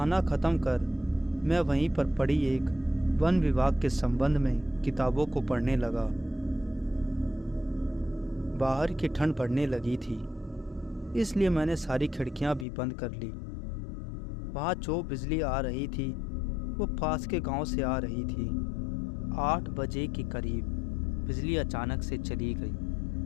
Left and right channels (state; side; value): drops out; right; at 12.7 s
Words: ख़त्म कर मैं वहीं पर पड़ी एक वन विभाग के संबंध में किताबों को पढ़ने लगा। बाहर की ठंड पड़ने लगी थी, इसलिए मैंने सारी खिड़कियां भी बंद कर ली। वहाँ जो बिजली आ रही थी वो पास के गांव से आ रही थी। 8 बजे के करीब बिजली अचानक से चली गई।